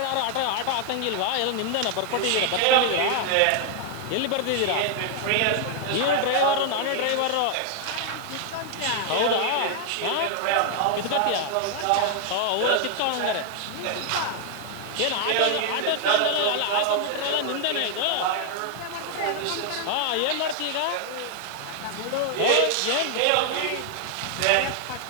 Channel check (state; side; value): different; both; correlation 0.00